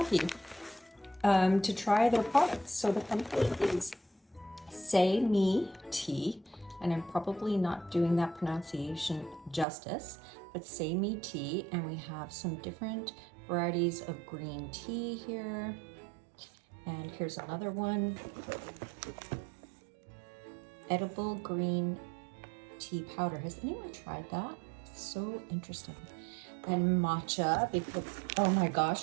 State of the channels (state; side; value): drops out; left; at 9.7 s